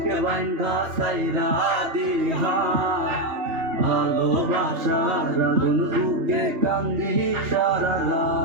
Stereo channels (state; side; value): late; left; 2.8 ms